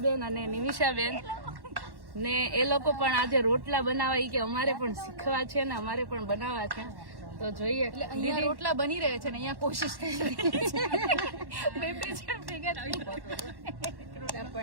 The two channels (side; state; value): left; late; 1.1 ms